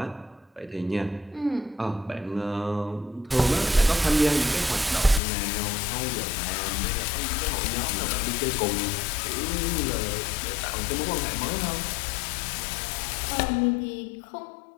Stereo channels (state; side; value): drops out; right; at 5.2 s